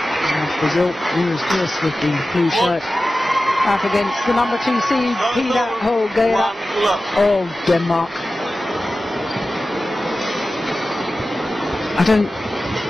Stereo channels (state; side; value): normal; both; correlation 0.95